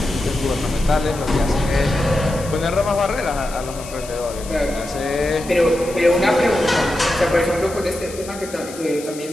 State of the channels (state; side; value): noise; left; hiss, 15 dB below the sound